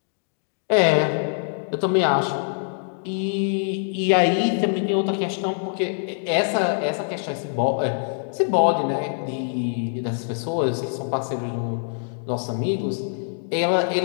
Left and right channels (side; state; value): right; silent; digital silence